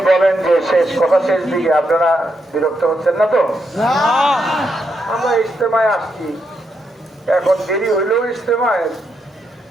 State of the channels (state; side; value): normal; both; correlation 0.81